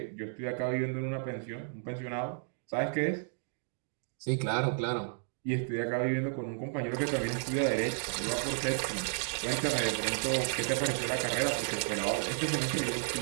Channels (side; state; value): left; silent; digital silence